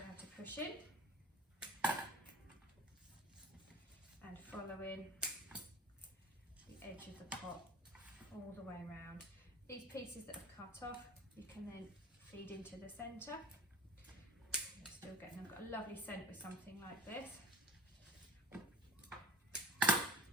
to push in. And following the edge of the pot all the way around. These pieces that I've cut off, you can then feed into the centre. Still getting, I've got a lovely scent with something like this.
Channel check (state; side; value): normal; both; correlation 0.39